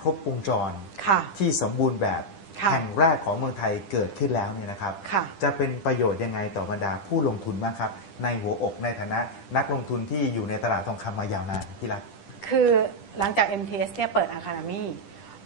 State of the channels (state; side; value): late; right; 10 ms